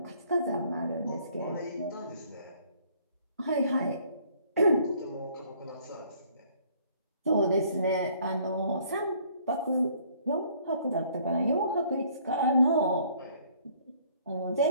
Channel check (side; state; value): both; inverted; correlation -0.60